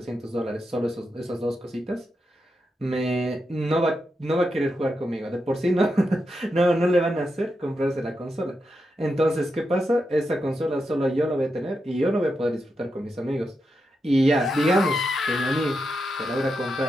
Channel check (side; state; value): both; normal; correlation 0.86